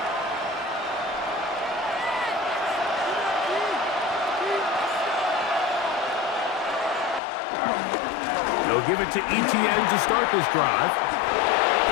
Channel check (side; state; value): right; drops out; at 7.2 s